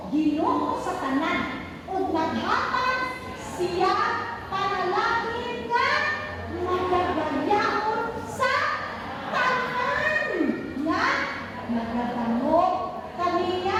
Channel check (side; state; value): both; identical; correlation 1.00